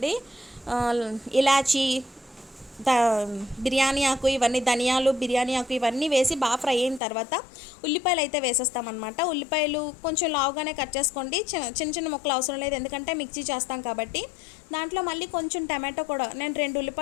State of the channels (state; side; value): drops out; right; at 7.0 s